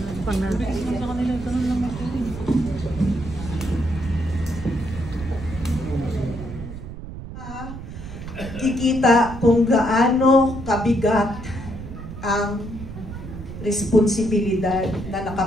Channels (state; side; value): noise; right; rumble, 10 dB below the sound